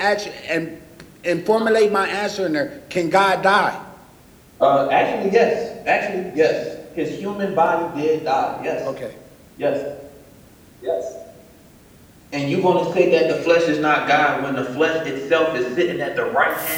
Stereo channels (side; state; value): both; identical; correlation 1.00